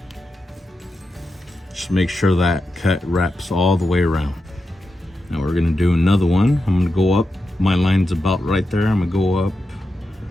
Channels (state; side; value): normal; both; correlation 0.89